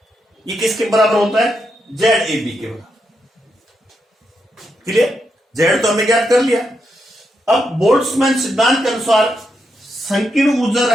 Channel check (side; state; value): both; normal; correlation 0.82